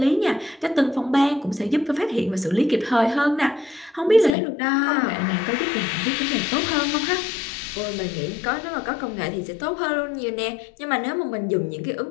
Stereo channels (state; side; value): drops out; right; at 4.4 s